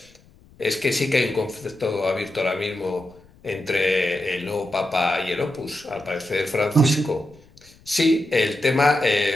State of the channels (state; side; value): noise; left; rumble, 27 dB below the sound